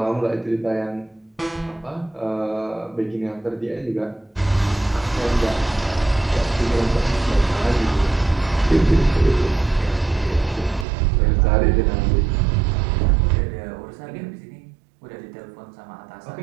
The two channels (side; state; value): left; drops out; at 10.9 s